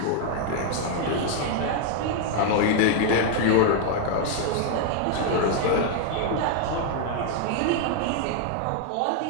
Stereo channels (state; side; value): different; both; correlation 0.00